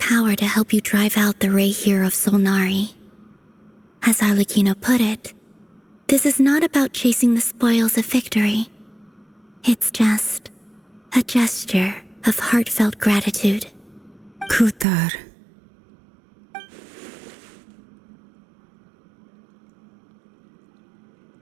to help you drive out the Ray here of Solnari. As Arlecchino put it, this is not about chasing the spoils of victory. It's just a gesture of heartfelt gratitude. Kutar.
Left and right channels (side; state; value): left; drops out; at 14.9 s